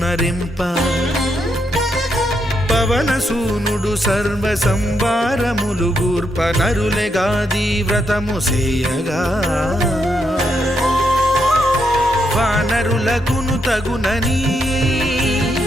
పవనసూనుడు సర్వ సంవారములు గూర్ప నరులెగాది వ్రతము సేయగా. వానరులకును తగునని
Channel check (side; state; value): both; normal; correlation 0.79